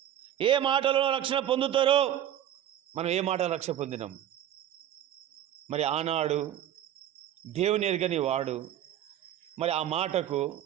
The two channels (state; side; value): quieter; left; 11.4 dB